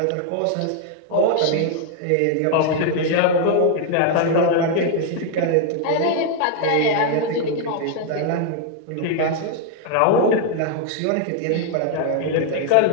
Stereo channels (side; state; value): both; different; correlation 0.00